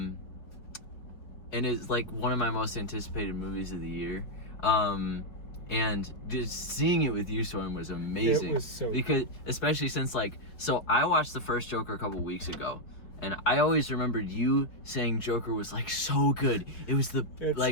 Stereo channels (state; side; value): late; right; 4.7 ms